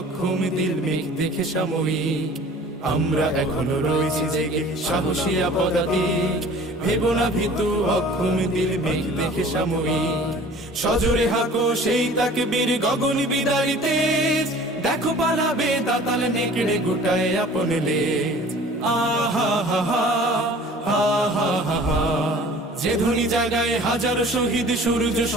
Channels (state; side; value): normal; both; correlation 0.47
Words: দিল মেঘ দেখে সাময়িক। আমরা এখনো রয়েছি জেগে সাহসিয়া পদাতিক, ভেবো না ভীতু অক্ষম দিল মেঘ দেখে সাময়িক। সজোরে হাঁকো সেই তাকবীর গগন বিদারী তেজ, দেখো পালাবে দাতাল নেকড়ে গোটায় আপন লেজ। আহা হা হা, হা হা হা হা। যে ধ্বনি জাগায় হাজার শহীদ সূর্য